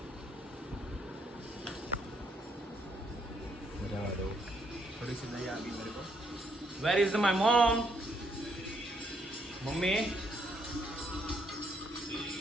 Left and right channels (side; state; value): both; normal; correlation 0.73